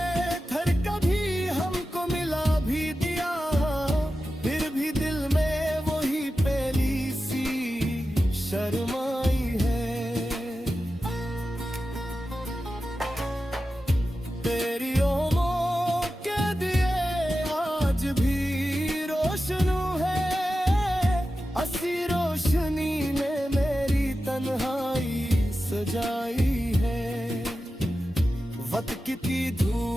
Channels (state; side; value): normal; both; correlation 0.92